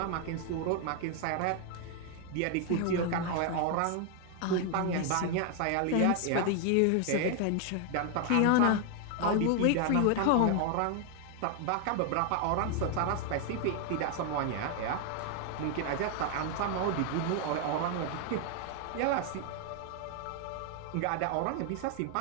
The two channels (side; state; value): both; different; correlation 0.00